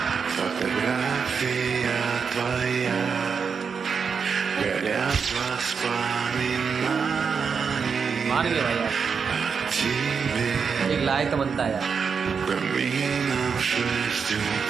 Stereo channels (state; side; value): quieter; left; 6.0 dB